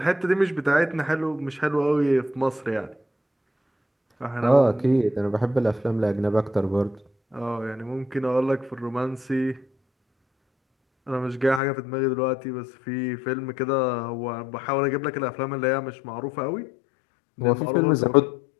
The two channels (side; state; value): right; drops out; at 11.6 s